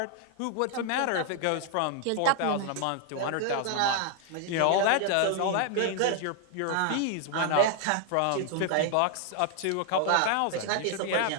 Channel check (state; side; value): different; both; correlation 0.00